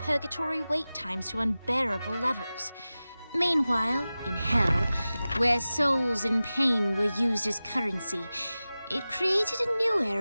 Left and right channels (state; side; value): inverted; both; correlation -0.96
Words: wait times to unbearable levels. Meanwhile, in hell, where souls in pain were used as currency, it created a new